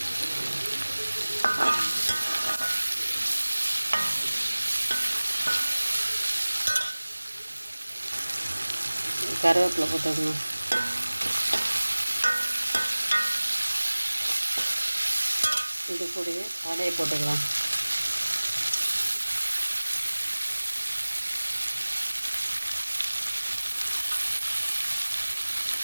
கருவேப்பிலை போட்டுக்கணும். இது கூடவே காடையை போட்டுக்கலாம்.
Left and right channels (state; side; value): inverted; both; correlation -1.00